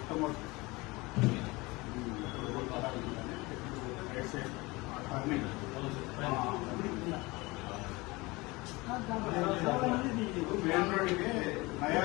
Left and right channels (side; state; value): right; quieter; 23.2 dB